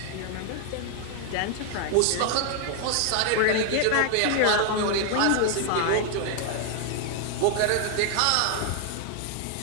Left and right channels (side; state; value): both; different; correlation 0.00